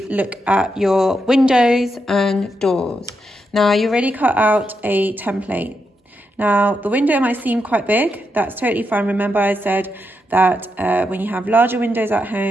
look at your windows and doors. Now, you already cut out a template. Now, the window might seem quite big. That's totally fine. Remember, I said that when you have larger windows at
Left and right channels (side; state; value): both; normal; correlation 0.84